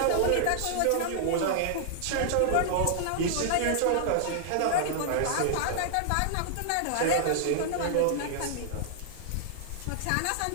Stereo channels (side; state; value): both; different; correlation -0.01